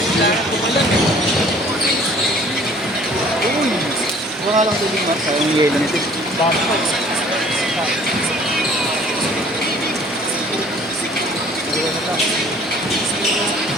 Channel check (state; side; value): normal; both; correlation 0.53